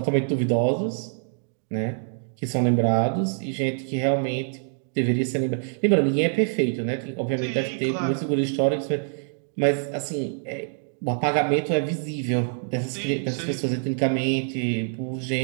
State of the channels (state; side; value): silent; left; digital silence